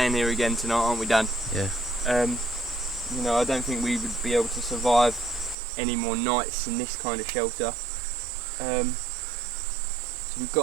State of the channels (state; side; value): drops out; left; at 5.6 s